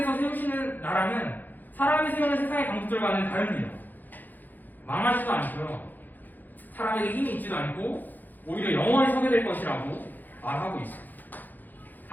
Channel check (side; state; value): right; late; 0.085 ms